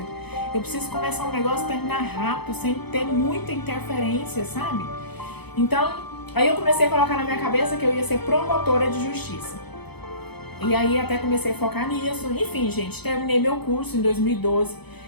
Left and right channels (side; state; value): right; late; 0.98 ms